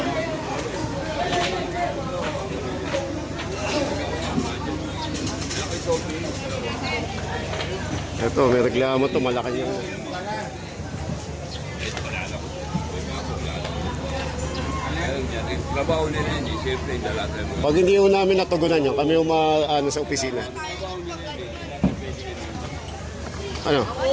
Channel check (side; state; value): both; identical; correlation 1.00